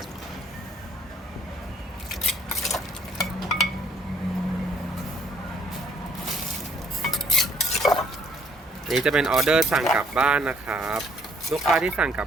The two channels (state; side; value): normal; both; correlation 0.63